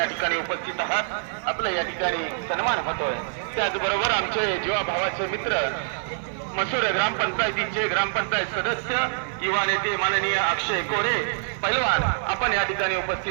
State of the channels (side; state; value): left; silent; digital silence